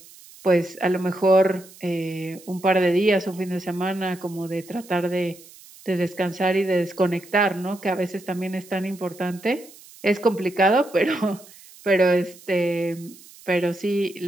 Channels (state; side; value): noise; right; hiss, 22 dB below the sound